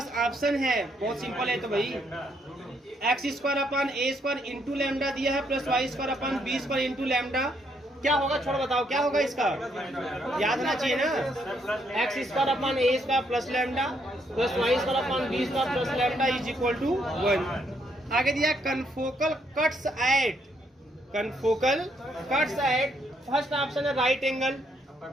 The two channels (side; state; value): both; normal; correlation 0.73